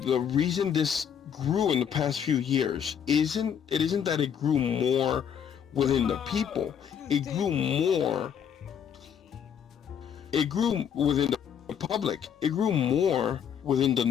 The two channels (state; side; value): quieter; right; 8.2 dB